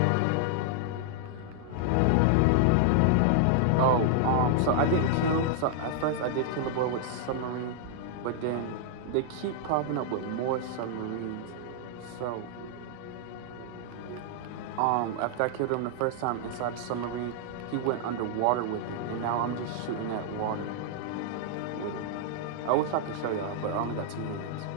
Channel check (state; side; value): different; both; correlation -0.01